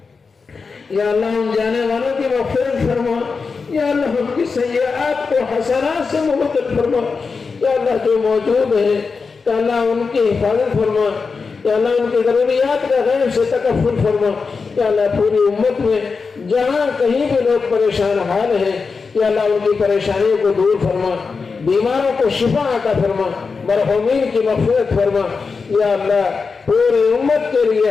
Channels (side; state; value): right; quieter; 4.8 dB